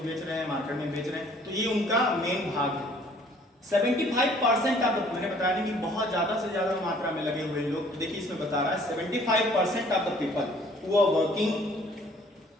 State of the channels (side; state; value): both; normal; correlation 0.57